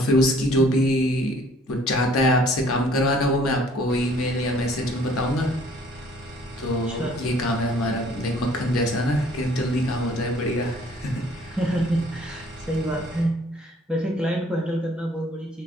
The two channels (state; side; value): normal; both; correlation 0.57